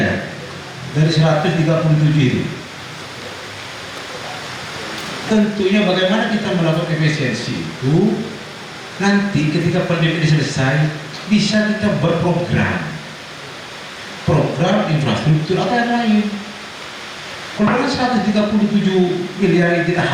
ya dari 137 itu. Tentunya bagaimana kita melakukan efisiensi itu, nanti ketika pandemi ini selesai bisa kita berprogram, program infrastruktur atau yang lain. Kalau 137 miliar kita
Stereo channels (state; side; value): identical; both; correlation 1.00